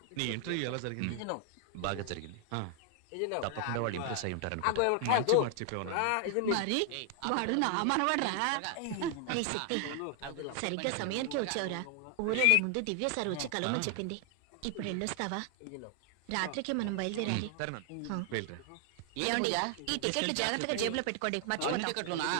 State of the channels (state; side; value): different; both; correlation 0.00